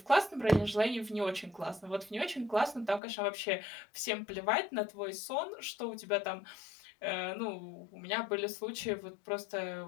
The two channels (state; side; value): drops out; right; at 3.0 s